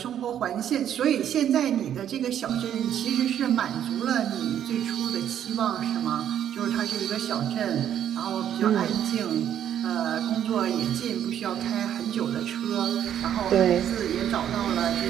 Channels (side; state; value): left; quieter; 10.1 dB